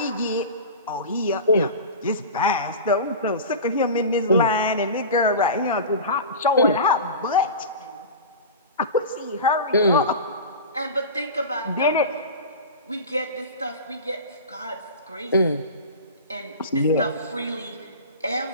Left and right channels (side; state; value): both; inverted; correlation -0.31